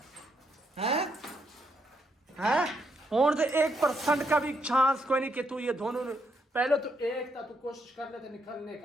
है हैं? और तो 1% का भी चांस कोई नहीं कि तू ये दोनों पहले तो एक था, तू कोशिश कर लेते निकलने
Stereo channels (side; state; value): both; normal; correlation 0.77